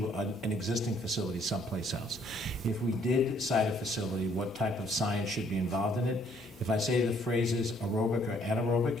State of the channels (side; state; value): both; normal; correlation 0.64